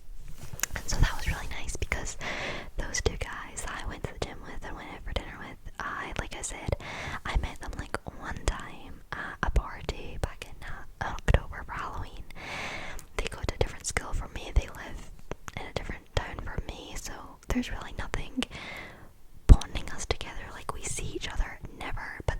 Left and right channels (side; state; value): both; identical; correlation 1.00